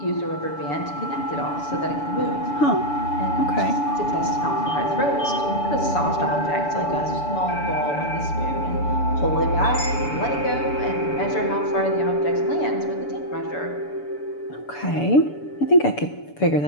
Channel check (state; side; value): late; right; 6.9 ms